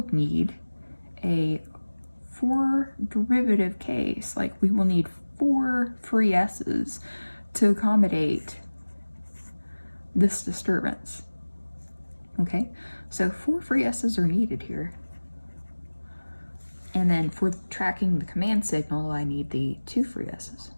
need a 4 derivative case. Like we will need 4 free s's to accommodate this disturbance. Okay, so 4 free s's are needed here. And then for tracking the command signal, I need the 2 free s's.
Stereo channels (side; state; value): both; inverted; correlation -1.00